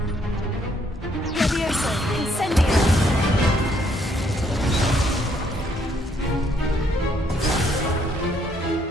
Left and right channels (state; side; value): normal; both; correlation 0.69